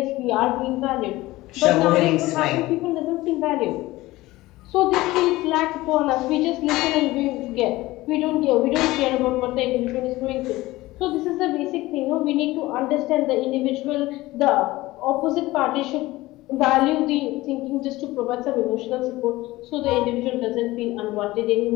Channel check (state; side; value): quieter; right; 18.6 dB